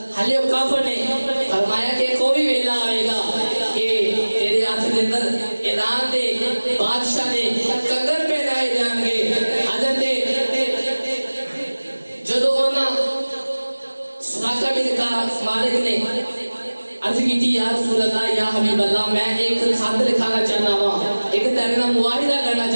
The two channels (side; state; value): both; inverted; correlation -1.00